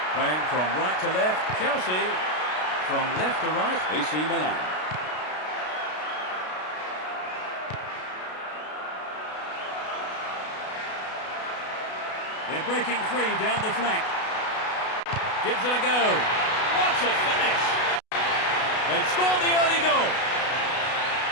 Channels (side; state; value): right; late; 33 ms